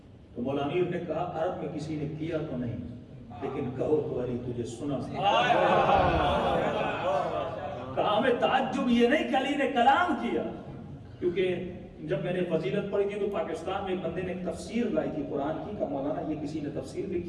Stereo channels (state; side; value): identical; both; correlation 1.00